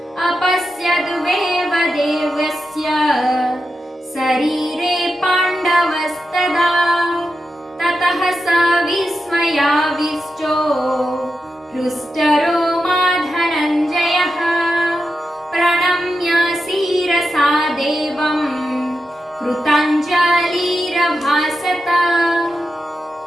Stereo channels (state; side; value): normal; both; correlation 0.89